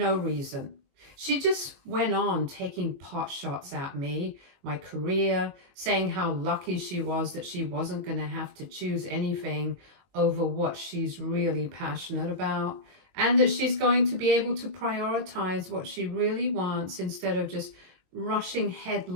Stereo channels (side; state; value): left; late; 22 ms